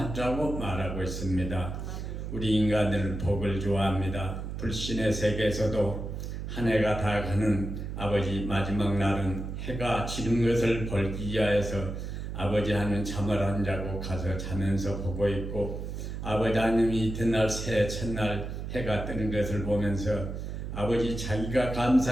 말하고 있습니다. 우리 인간들은 복을 좋아합니다. 불신의 세계에서도 한 해가 다 가는 아버지 마지막 날은 해가 지는 것을 벌기 위하여서 아버지 하는 잠을 안 자고 가서 자면서 보고 있고, 아버지 하나님이 이튿날 새해 첫날 해가 뜨는 것을 보면서 아버지 자기가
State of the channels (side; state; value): right; noise; hum, 6 dB below the sound